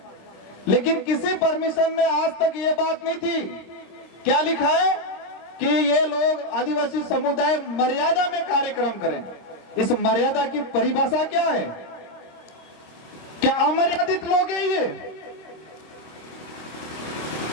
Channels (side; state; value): right; late; 26 ms